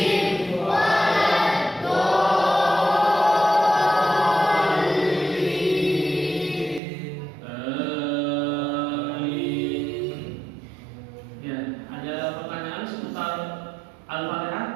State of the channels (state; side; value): drops out; left; at 6.8 s